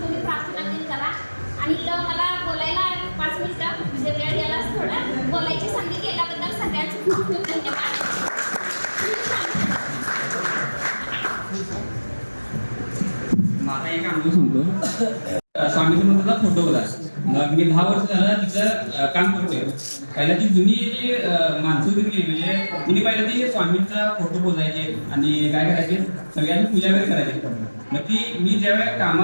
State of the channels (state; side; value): inverted; both; correlation -1.00